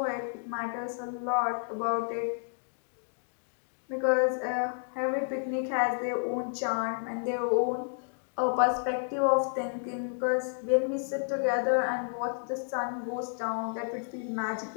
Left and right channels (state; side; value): silent; right; digital silence